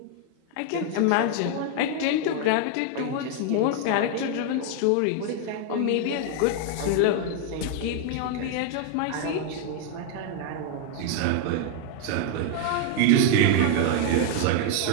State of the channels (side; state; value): both; different; correlation 0.00